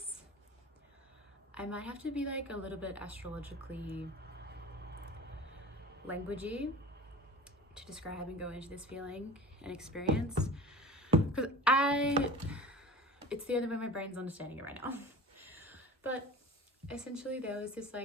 I might have to be like a little bit astrologically languagey to describe and go into this feeling and experience. Because it's the only way my brain's understanding it right now. But essentially there was this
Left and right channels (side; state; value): both; normal; correlation 0.37